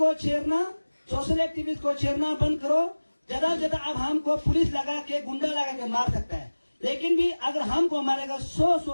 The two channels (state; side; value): inverted; both; correlation -1.00